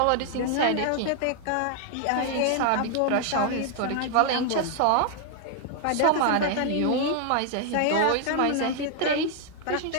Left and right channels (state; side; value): different; both; correlation 0.00